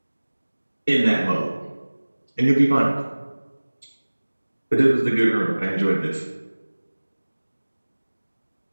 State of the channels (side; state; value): both; inverted; correlation -1.00